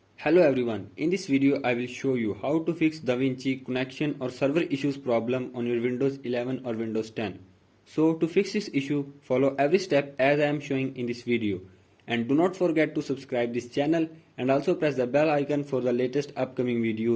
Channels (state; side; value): identical; both; correlation 1.00